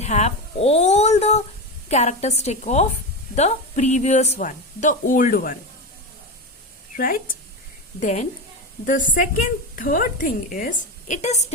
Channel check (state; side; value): normal; both; correlation 0.18